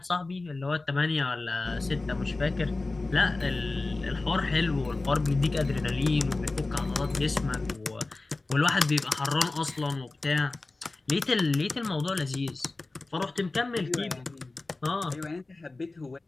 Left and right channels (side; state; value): right; quieter; 3.3 dB